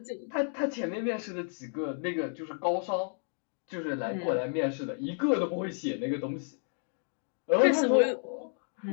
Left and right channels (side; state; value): right; silent; 56 dB below the other